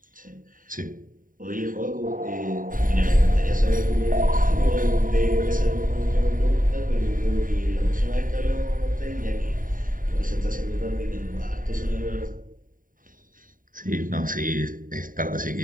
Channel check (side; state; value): left; late; 0.40 ms